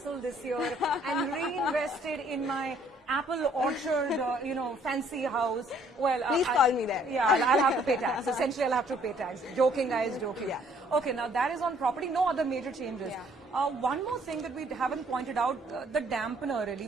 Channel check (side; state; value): both; normal; correlation 0.62